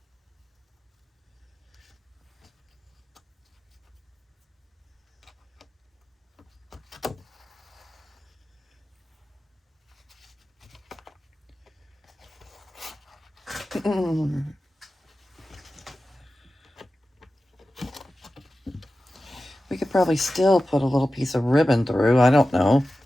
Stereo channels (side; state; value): both; normal; correlation 0.94